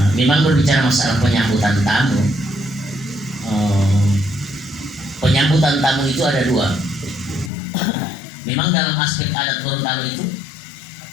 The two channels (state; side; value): drops out; right; at 7.5 s